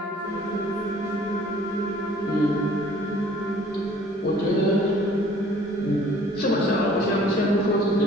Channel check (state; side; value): normal; both; correlation 0.54